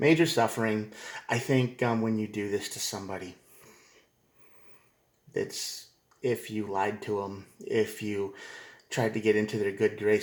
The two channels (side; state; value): both; identical; correlation 1.00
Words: suffering. I think when you do this to somebody, it's if you lied to them, if you tried to get into their good